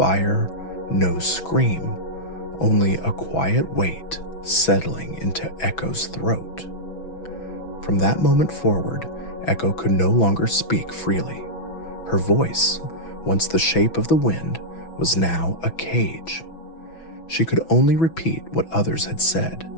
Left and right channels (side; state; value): right; late; 6.1 ms